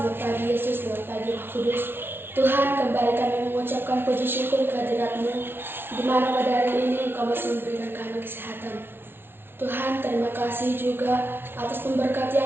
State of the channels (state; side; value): late; left; 0.11 ms